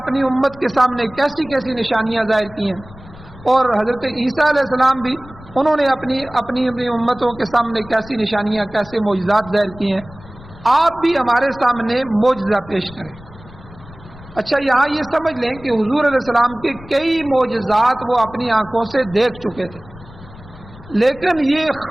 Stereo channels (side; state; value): left; noise; rumble, 19 dB below the sound